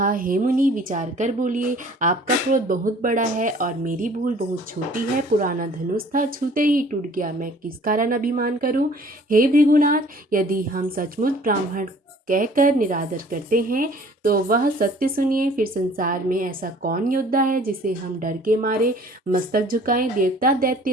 हे मुनि, विचार कर बोलिए। आपका क्रोध बहुत बड़ा है और मेरी भूल बहुत छोटी है। पुराना धनुष था, छूते ही टूट गया, मैं किस कारण अभिमान करूं। हे भृगुनाथ, यदि हम सचमुच ब्राह्मण कहकर निरादर करते हैं तो वह सत्य सुनिए। फिर संसार में ऐसा कौन योद्धा है जिसे हम डर के मारे मस्तक झुकाएं। देवता,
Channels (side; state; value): both; normal; correlation 0.52